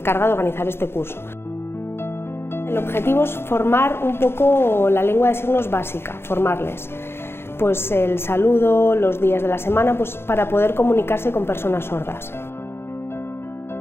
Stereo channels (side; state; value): right; late; 0.12 ms